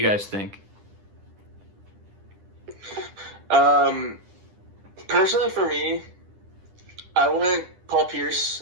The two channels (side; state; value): left; late; 10 ms